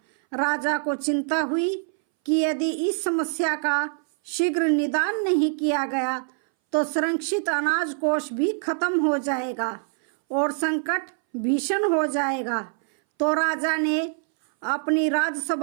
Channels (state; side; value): silent; left; 61 dB below the other